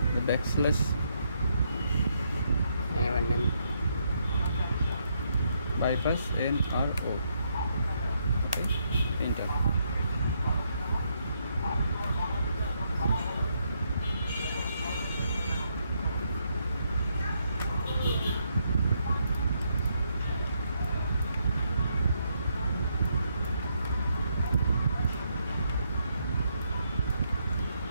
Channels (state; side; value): inverted; both; correlation -0.76